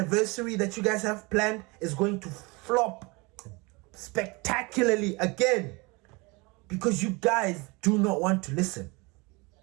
that you guys have planned is going to flop spectacularly again, because you guys do not want to listen.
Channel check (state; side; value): quieter; left; 26.5 dB